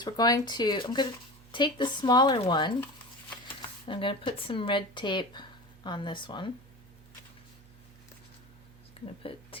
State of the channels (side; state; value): right; noise; hum, 23 dB below the sound